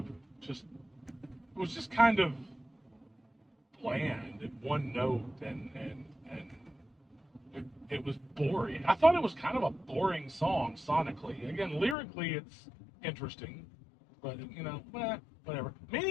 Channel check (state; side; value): drops out; right; at 12.0 s